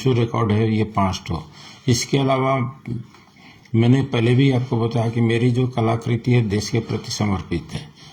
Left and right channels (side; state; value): both; identical; correlation 1.00